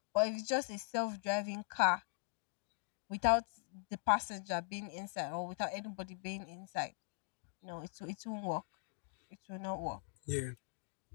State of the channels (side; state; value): right; silent; digital silence